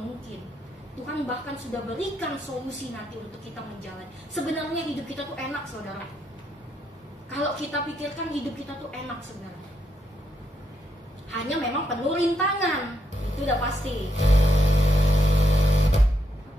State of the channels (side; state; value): both; normal; correlation 0.78